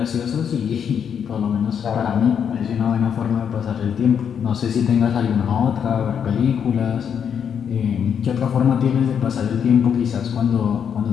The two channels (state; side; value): quieter; right; 7.8 dB